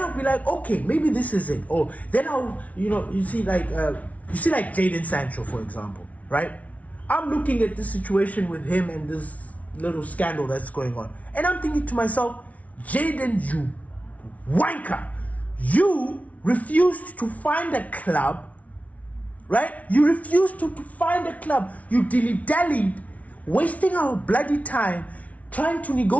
be like, okay, maybe this is it. Or then I'll, you see like Jadon Sancho, for example, right? I'm looking at this situation with him and this little scandal that's going on. And I'm thinking to myself, Jadon, you wanker, you refused to find a club, right? You refused to find a club. You dilly-dallied, wasting our bloody time trying to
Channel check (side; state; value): right; late; 0.068 ms